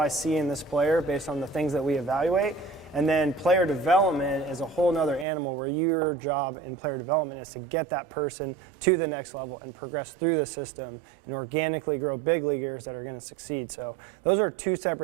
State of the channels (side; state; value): left; drops out; at 5.2 s